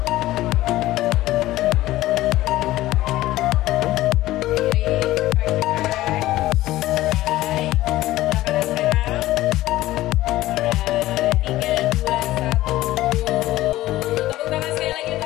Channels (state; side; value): quieter; right; 16.1 dB